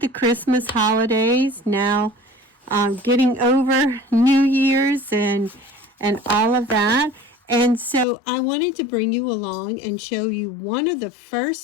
Christmas holidays. Now getting over New Year's and all of that. And so I wanted to bring you along and show you one of the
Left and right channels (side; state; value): right; drops out; at 8.1 s